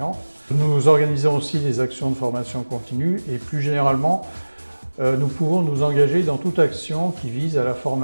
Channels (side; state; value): both; inverted; correlation -1.00